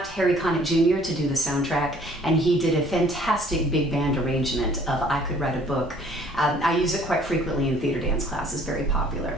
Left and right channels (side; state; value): both; normal; correlation 0.56